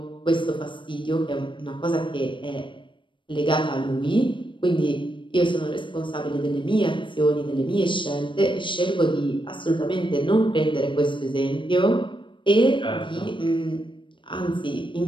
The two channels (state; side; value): late; right; 0.24 ms